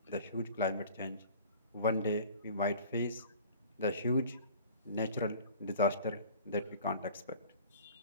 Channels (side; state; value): both; inverted; correlation -0.45